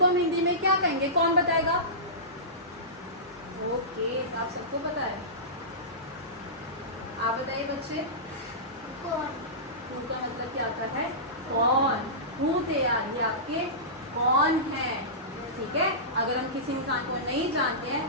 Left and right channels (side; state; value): both; normal; correlation -0.20